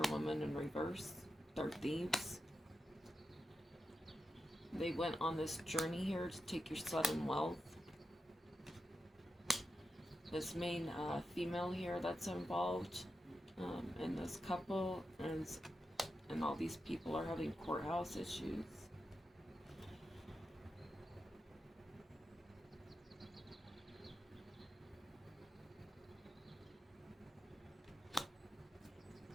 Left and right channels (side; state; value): both; normal; correlation 0.89